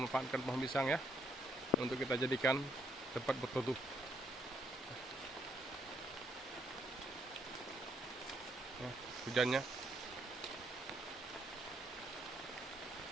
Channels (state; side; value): normal; both; correlation 0.71